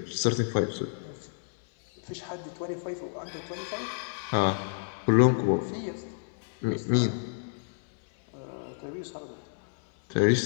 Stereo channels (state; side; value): silent; right; 58 dB below the other